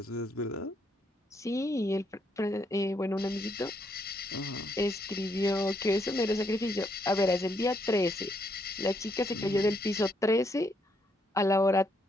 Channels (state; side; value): normal; both; correlation 0.75